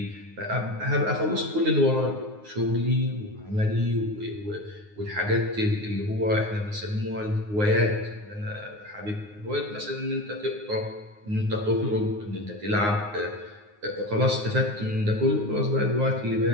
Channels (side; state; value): left; late; 9.6 ms